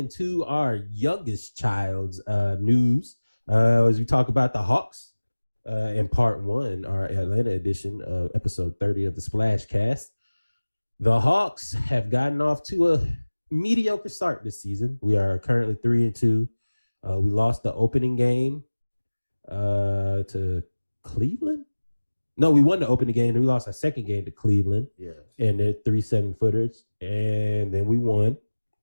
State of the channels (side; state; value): both; inverted; correlation -1.00